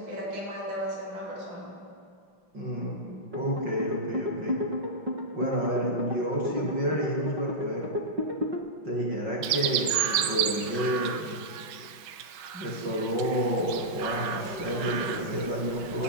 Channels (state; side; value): late; left; 6.1 ms